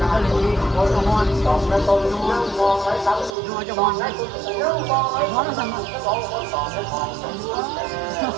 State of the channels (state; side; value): drops out; left; at 3.4 s